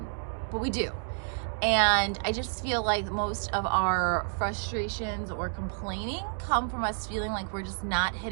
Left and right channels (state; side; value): silent; left; digital silence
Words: but we do. And I just feel like most of our frustrations or complaining come from us feeling like we're just not